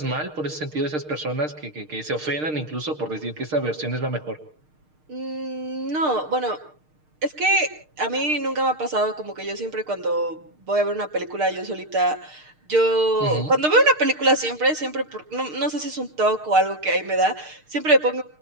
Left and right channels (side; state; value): left; late; 6.5 ms